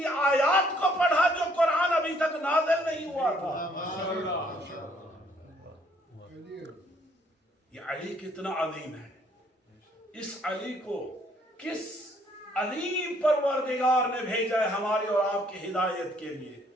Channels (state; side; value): normal; both; correlation 0.65